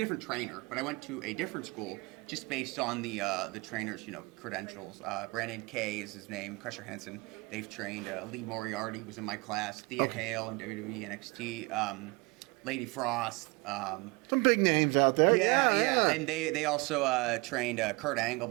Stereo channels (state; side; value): quieter; left; 25.3 dB